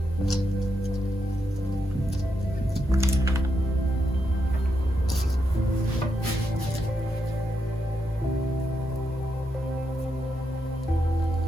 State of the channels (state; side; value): normal; both; correlation 0.82